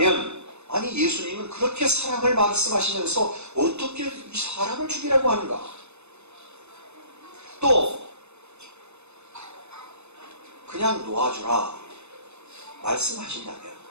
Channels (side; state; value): left; late; 0.81 ms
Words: 아니 예수님은 그렇게 사랑을 말씀하시면서 어떻게 이 사람을 죽이라고 하는가? 또 그냥 놓아주라 말씀하신다면